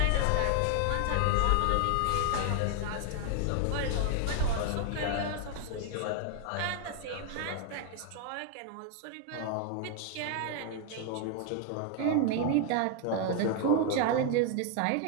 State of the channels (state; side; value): different; both; correlation 0.00